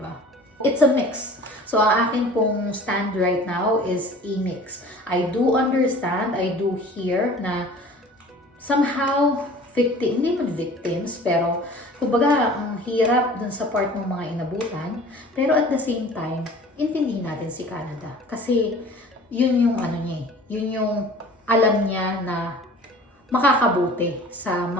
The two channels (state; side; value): normal; both; correlation 0.44